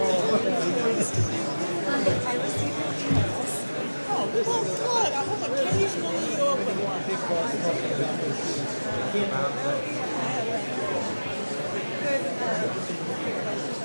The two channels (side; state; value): both; inverted; correlation -1.00